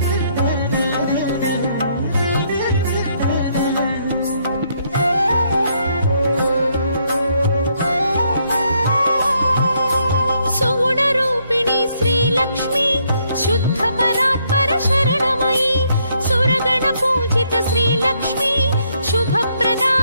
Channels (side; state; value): both; inverted; correlation -0.72